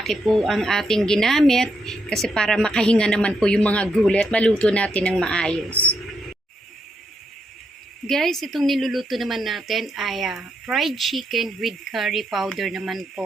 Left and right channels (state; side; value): normal; both; correlation 0.79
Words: po ang ating ginamit kasi para makahinga naman po yung mga gulay at maluto natin ng maayos. Guys, itong niluluto naman natin ay fried chicken with curry powder naman